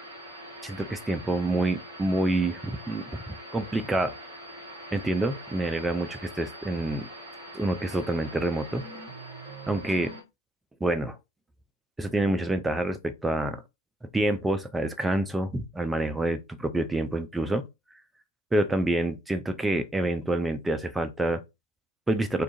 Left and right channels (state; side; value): normal; both; correlation 0.79